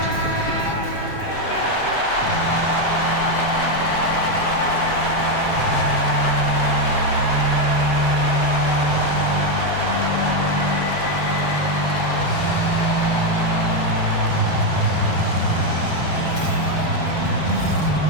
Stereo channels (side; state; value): right; late; 7.3 ms